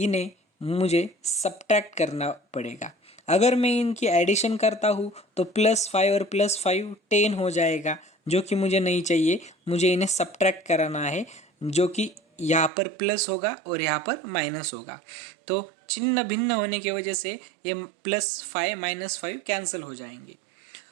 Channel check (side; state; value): left; drops out; at 12.7 s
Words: मुझे सब्ट्रैक्ट करना पड़ेगा। अगर मैं इनकी एडिशन करता हूँ तो +5 और +5 10 हो जाएगा, जो कि मुझे नहीं चाहिए। मुझे इन्हें सब्ट्रैक्ट कराना है, जो कि यहाँ पर प्लस होगा और यहाँ पर माइनस होगा। तो चिन्ह भिन्न होने की वजह से ये +5 -5 कैंसिल हो जाएंगे।